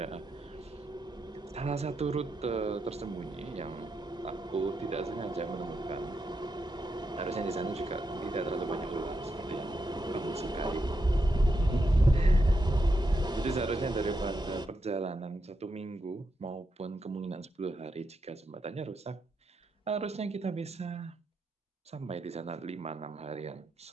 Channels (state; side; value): normal; both; correlation 0.84